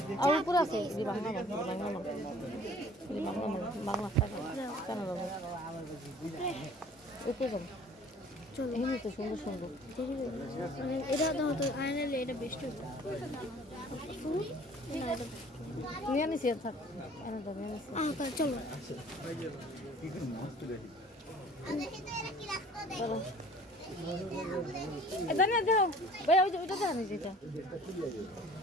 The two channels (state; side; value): normal; both; correlation 0.50